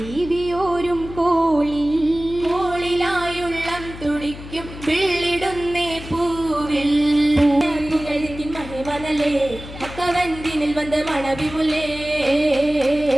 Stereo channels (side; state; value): left; noise; hum, 13 dB below the sound